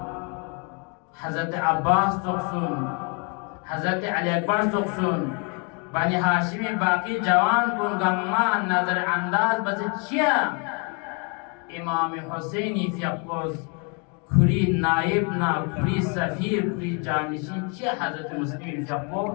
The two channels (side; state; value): right; quieter; 35.3 dB